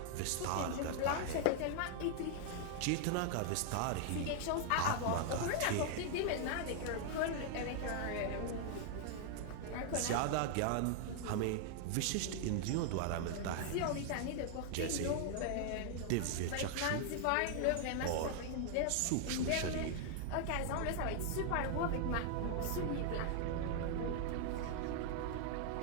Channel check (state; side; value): different; both; correlation 0.00